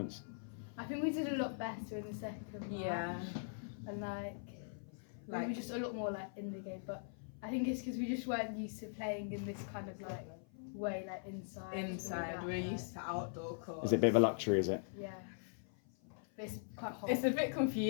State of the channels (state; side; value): silent; right; 50 dB below the other